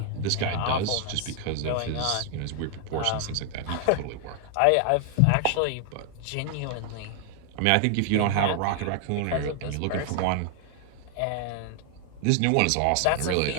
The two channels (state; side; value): different; both; correlation 0.00